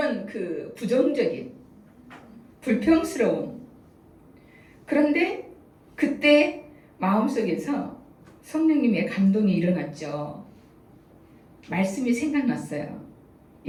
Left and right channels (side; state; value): both; identical; correlation 1.00